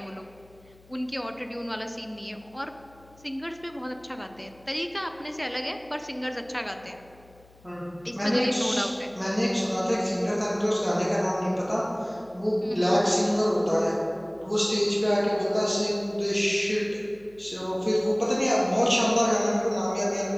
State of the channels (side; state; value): left; noise; hum, 27 dB below the sound